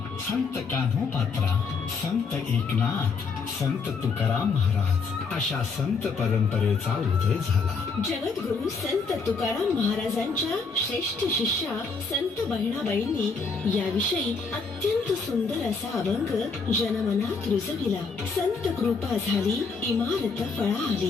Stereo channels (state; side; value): quieter; right; 4.8 dB